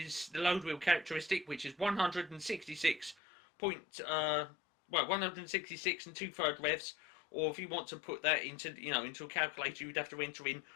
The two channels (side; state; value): right; drops out; at 3.2 s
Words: the load wheel characteristic, which is 166 166 and 2/3 revs, or if you want to put that into, you know, into a calculator, you'd have to enter in